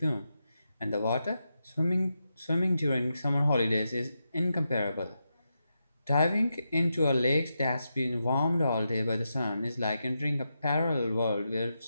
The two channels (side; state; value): both; inverted; correlation -0.87